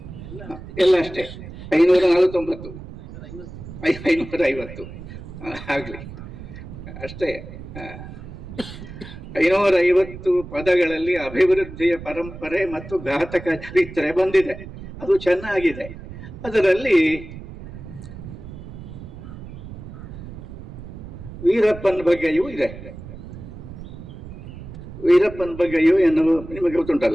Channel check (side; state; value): right; noise; rumble, 13 dB below the sound